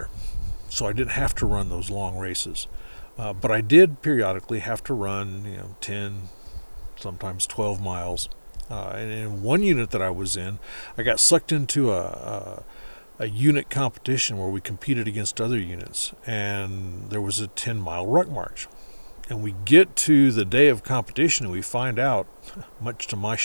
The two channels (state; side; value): inverted; both; correlation -1.00